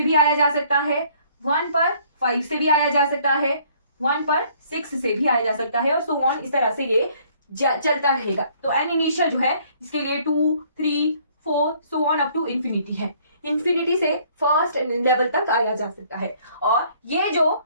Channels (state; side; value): inverted; both; correlation -0.61